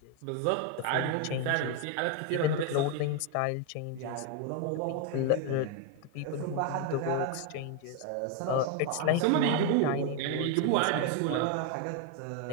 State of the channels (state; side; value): different; both; correlation 0.01